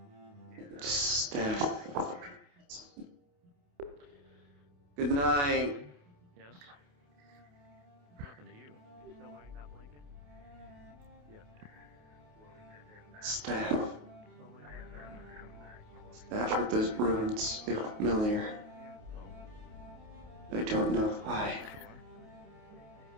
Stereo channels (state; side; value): late; left; 28 ms